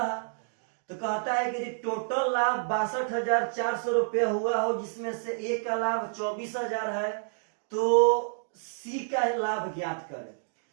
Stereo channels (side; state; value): left; silent; digital silence